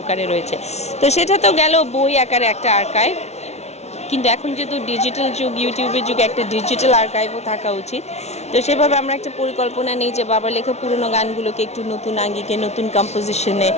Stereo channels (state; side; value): late; right; 0.31 ms